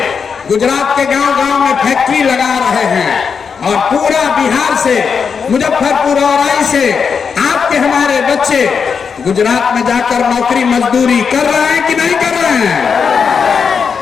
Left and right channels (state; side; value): quieter; right; 6.1 dB